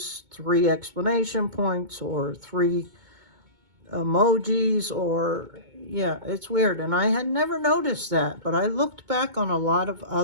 3 exclamation points or 3 emojis, or yeah, it's weird. And I had never noticed that, but I looked back on a lot of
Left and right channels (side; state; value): left; late; 2.2 ms